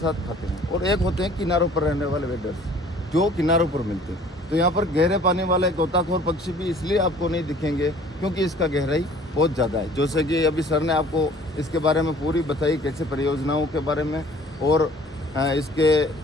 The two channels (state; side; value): normal; both; correlation 0.52